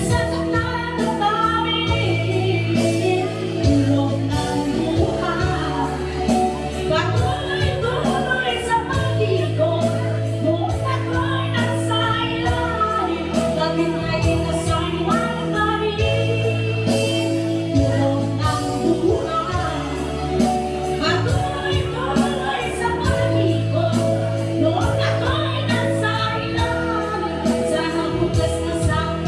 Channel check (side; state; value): both; identical; correlation 1.00